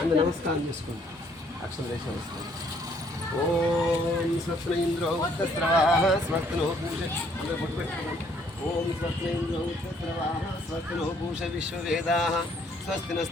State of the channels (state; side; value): normal; both; correlation 0.65